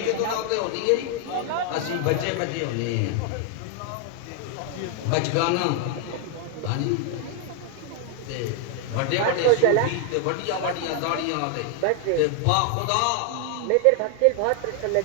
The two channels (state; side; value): different; both; correlation 0.00